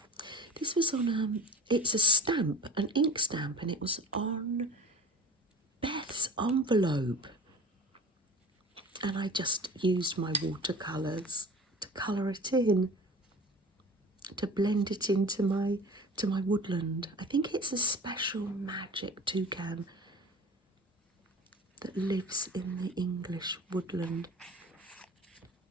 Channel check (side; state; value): both; normal; correlation 0.41